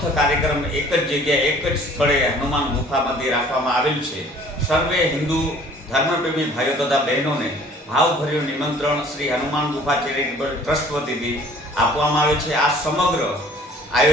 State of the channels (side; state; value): both; normal; correlation 0.53